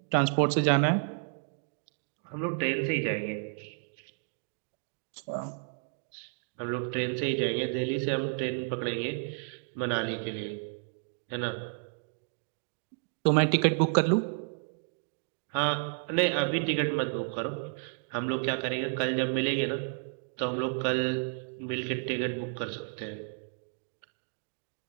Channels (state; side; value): silent; left; 57 dB below the other